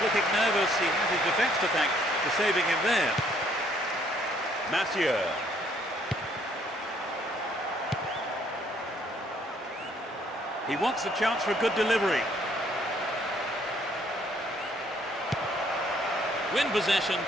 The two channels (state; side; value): normal; both; correlation 0.65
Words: looking nervous. He has his defence to thank for saving him there. Mathieu. He wants the chance for a good delivery. Win possession,